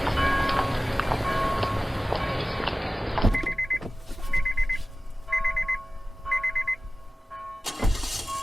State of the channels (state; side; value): normal; both; correlation 0.97